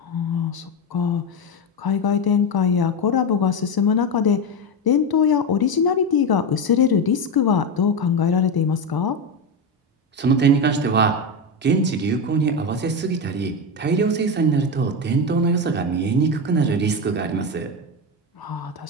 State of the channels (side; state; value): both; normal; correlation 0.14